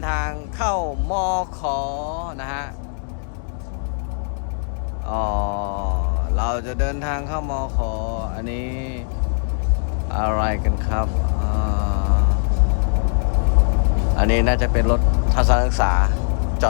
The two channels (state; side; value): silent; right; 58 dB below the other